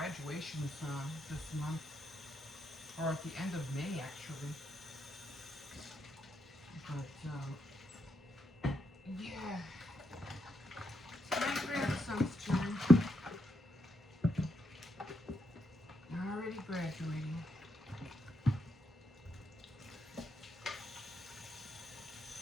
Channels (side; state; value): both; normal; correlation 0.81